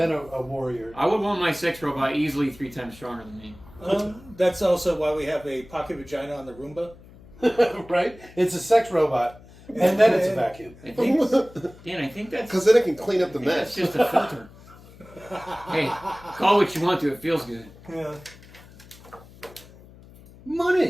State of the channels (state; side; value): noise; left; hum, 22 dB below the sound